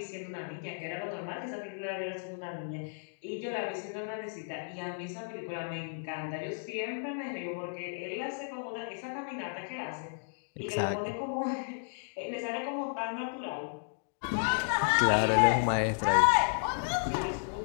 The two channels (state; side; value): silent; right; digital silence